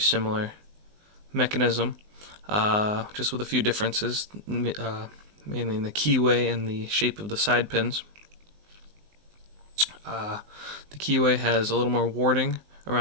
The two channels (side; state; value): left; late; 19 ms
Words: mechanism, just with a few differences, mainly in the keyway and the shape of the side pins. The keyway has a little more warding